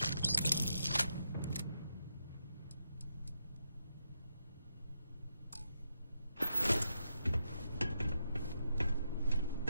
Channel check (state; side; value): inverted; both; correlation -0.82